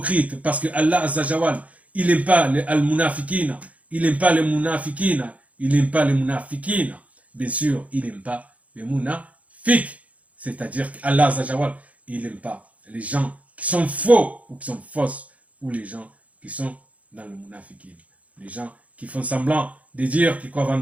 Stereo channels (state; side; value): late; left; 0.068 ms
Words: parce que Allah Zajawal, il n'aime pas les al-munafiqina, Il n'aime pas les munafikina. Il n'aime pas les munafikina. Bien sûr, il n'aime pas les munafiks. C'est-à-dire qu'Allah Azawajal, il n'aime pas les gens qui sont faux ou qui sont fausses, ou les gens qui sont dans le munafikin. Les gens qui font semblant de dire qu'ils croient en